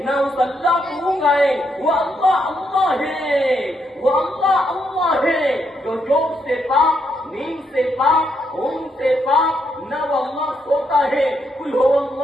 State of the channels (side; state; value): both; normal; correlation 0.77